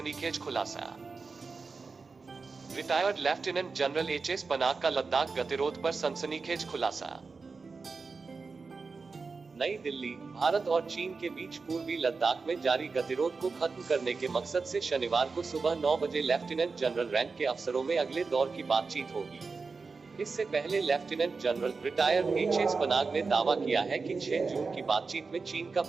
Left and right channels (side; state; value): left; quieter; 4.5 dB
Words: खुलासा। Retired lieutenant general HS Panag का लद्दाख गतिरोध पर सनसनीखेज खुलासा। नई दिल्ली। भारत और चीन के बीच पूर्वी लद्दाख में जारी गतिरोध को खत्म करने के मकसद से शनिवार को सुबह 9 बजे लेफ्टिनेंट जनरल रैंक के अफसरों में अगले दौर की बातचीत होगी। इससे पहले lieutenant general retired HS Panag ने दावा किया है कि 6 जून की बातचीत में चीन का